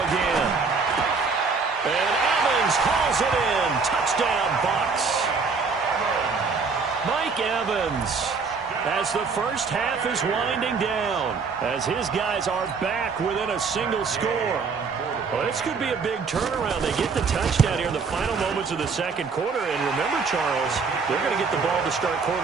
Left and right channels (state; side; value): quieter; left; 4.9 dB